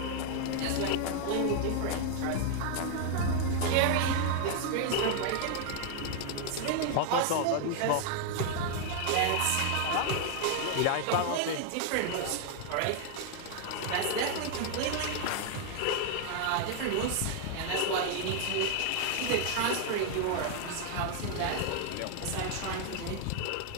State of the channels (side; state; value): both; different; correlation 0.00